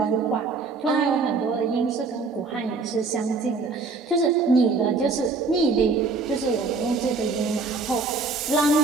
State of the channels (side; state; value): left; quieter; 4.2 dB